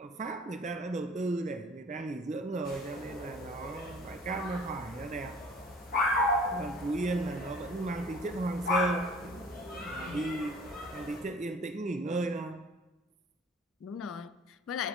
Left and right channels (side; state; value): both; normal; correlation 0.49